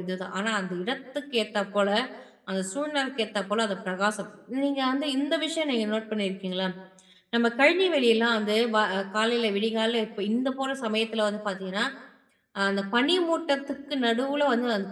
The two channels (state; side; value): identical; both; correlation 1.00